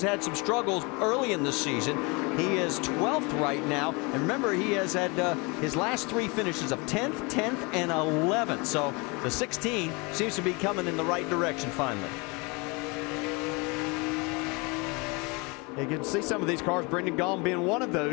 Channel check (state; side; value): quieter; right; 28.5 dB